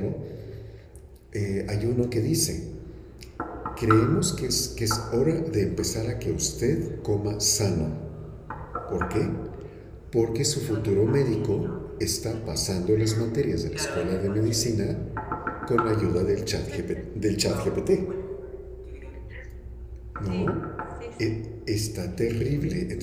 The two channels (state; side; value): identical; both; correlation 1.00